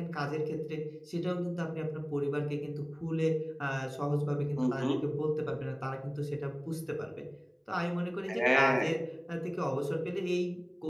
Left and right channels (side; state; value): both; identical; correlation 1.00